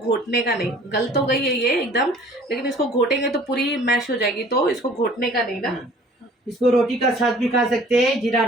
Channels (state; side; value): normal; both; correlation 0.51